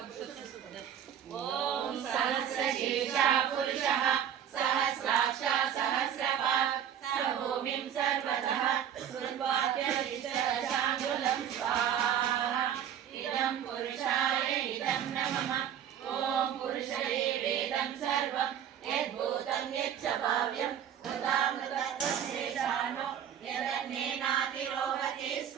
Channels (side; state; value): left; quieter; 9.4 dB